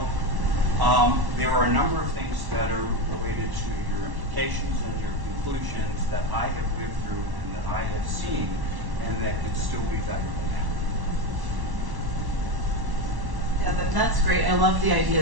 there are a number of things that are related to your implications and your conclusions that I have lived through and that I have seen and that can still be valuable now. Yeah, that's great. I love the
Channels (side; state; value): left; late; 1.1 ms